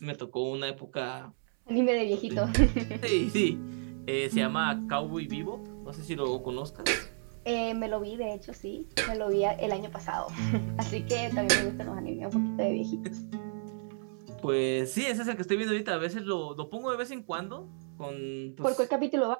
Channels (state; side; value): silent; left; 57 dB below the other